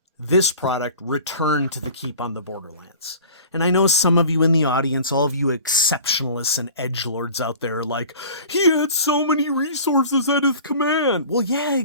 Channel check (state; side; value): inverted; both; correlation -0.43